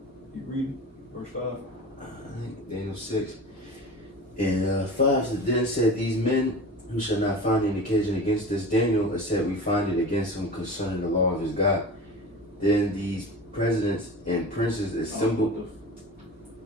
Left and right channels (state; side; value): normal; both; correlation 0.34